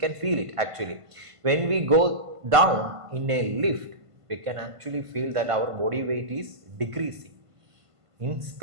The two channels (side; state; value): left; late; 1.5 ms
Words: feel it actually. When we go down in a lift, we can actually feel that our body weight is decreasing. In